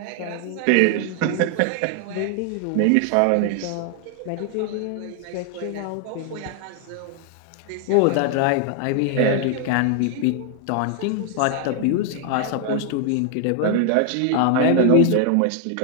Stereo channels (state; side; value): different; both; correlation 0.00